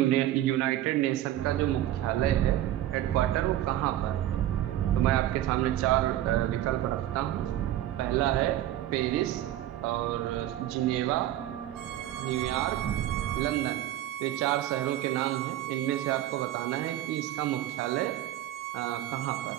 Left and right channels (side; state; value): left; quieter; 13.2 dB